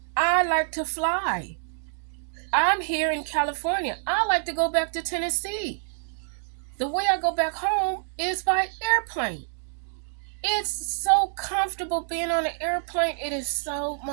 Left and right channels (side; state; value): left; silent; digital silence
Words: I like to fly. I'm here in California. I like to go back to Tennessee. The way I go back home is by airplane. It's so comfortable being on an airplane. It is so